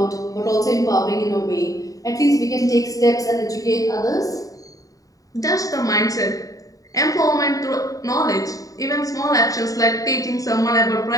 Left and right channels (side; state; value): right; late; 0.17 ms